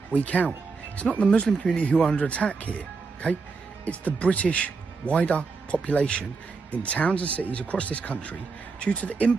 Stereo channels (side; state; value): left; quieter; 4.5 dB